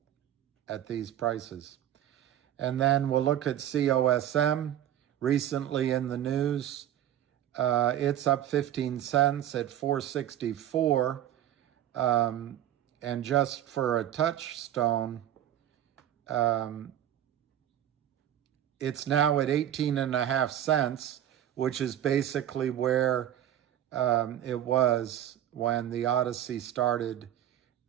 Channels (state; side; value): quieter; left; 11.4 dB